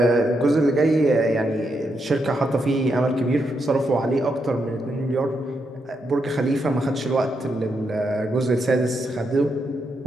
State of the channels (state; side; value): normal; both; correlation 0.81